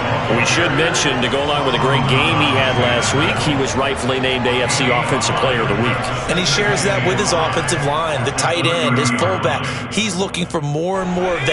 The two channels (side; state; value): both; identical; correlation 1.00